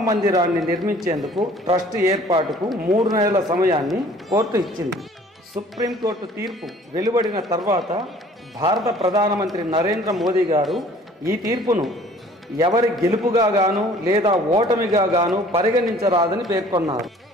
మందిరాన్ని నిర్మించేందుకు ట్రస్ట్ ఏర్పాటుకు 3 నెలల సమయాన్ని కోర్టు ఇచ్చింది. సుప్రీంకోర్టు తీర్పు వెలువడిన తర్వాత భారత ప్రధానమంత్రి నరేంద్ర మోదీ గారు ఈ తీర్పును ఎవరి గెలుపుగా గాను లేదా ఓటమిగా గాను పరిగణించరాదని పేర్కొన్నారు.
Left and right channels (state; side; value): normal; both; correlation 0.52